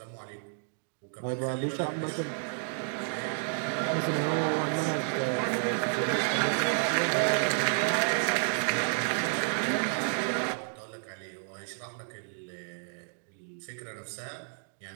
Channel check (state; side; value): silent; left; digital silence